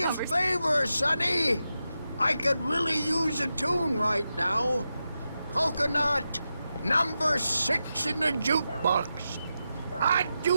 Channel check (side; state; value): both; inverted; correlation -0.89